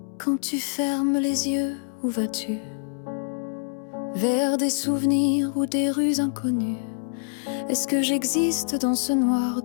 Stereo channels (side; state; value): right; silent; digital silence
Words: Quand tu fermes les yeux, où vas-tu? Vers des souvenirs ou des rues inconnues? Est-ce que j'existe dans ce noir